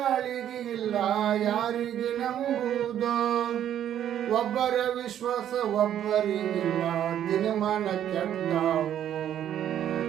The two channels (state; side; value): quieter; left; 10.6 dB